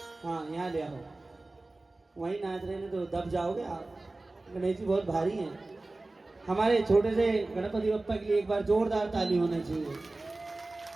हाँ यहाँ ले आओ, वहीं नाच रहे हैं तो दब जाओगे आप। गणेश जी बहुत भारी हैं। हमारे छोटे से गणपति बप्पा के लिए एक बार जोरदार ताली होनी चाहिए।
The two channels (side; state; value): left; quieter; 3.0 dB